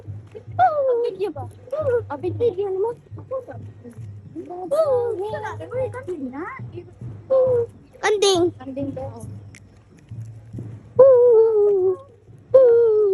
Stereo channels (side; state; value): both; identical; correlation 1.00